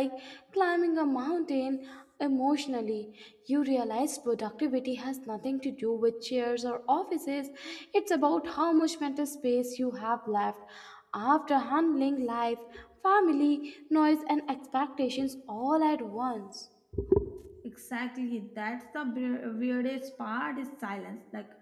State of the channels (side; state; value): both; identical; correlation 1.00